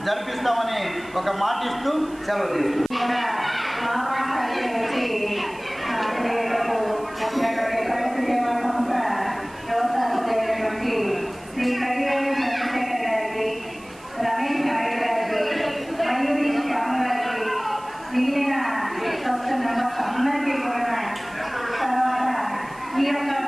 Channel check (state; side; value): noise; right; hiss, 24 dB below the sound